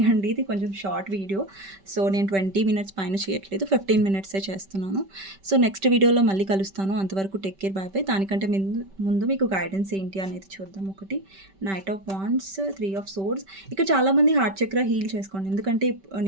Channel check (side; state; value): left; late; 5.2 ms